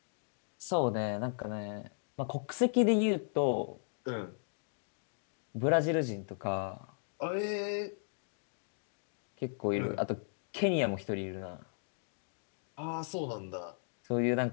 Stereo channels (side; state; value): right; silent; digital silence